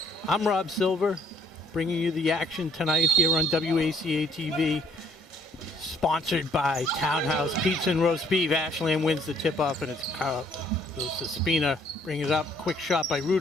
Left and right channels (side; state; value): both; normal; correlation 0.62